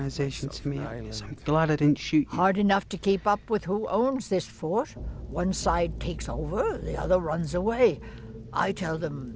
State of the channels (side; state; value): both; identical; correlation 1.00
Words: to me. I'm glad I didn't shoot you. Hard enough to keep up with who owns this fort. One side takes over, the other runs away. I tell